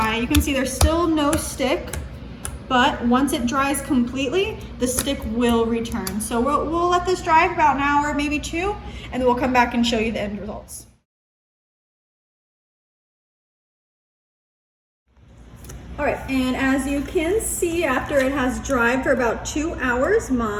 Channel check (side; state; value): both; identical; correlation 1.00